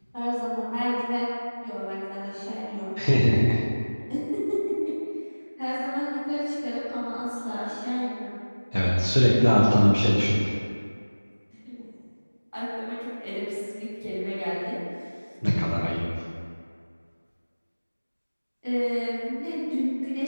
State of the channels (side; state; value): both; inverted; correlation -1.00